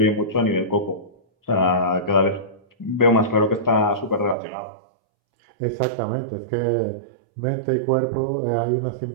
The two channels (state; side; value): drops out; left; at 4.4 s